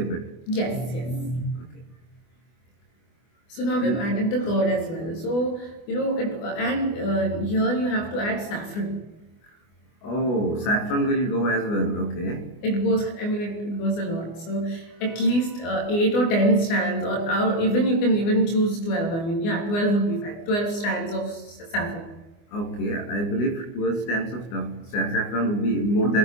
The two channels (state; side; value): late; right; 24 ms